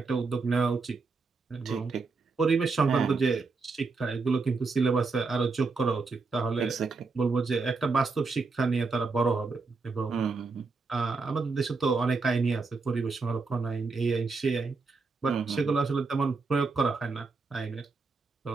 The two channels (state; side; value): quieter; left; 4.2 dB